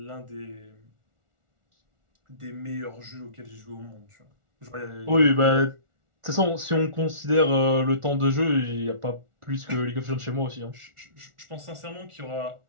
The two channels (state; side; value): late; left; 1.4 ms